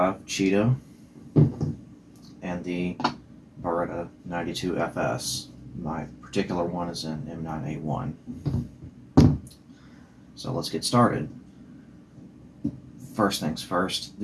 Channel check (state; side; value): identical; both; correlation 1.00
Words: Cheetah and the Beretta 92FS. My particular one is an M9A1. So let's get started. First things first,